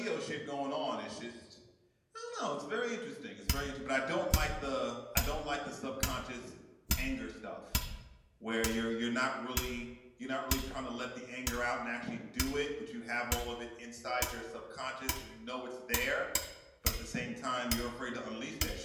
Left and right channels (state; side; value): identical; both; correlation 1.00